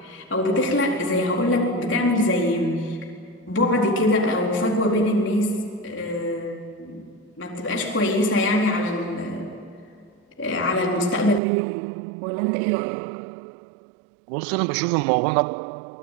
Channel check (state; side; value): drops out; left; at 11.4 s